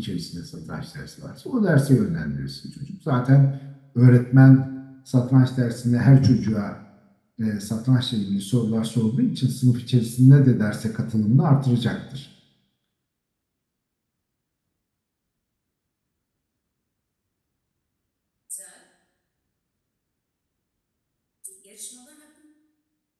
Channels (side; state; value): both; identical; correlation 1.00